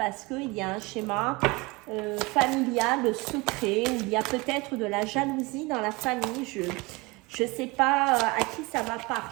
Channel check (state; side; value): quieter; left; 25.2 dB